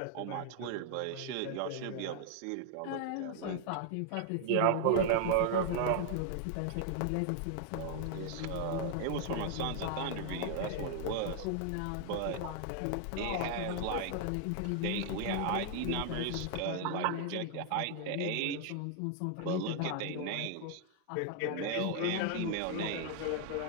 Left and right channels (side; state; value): both; different; correlation 0.00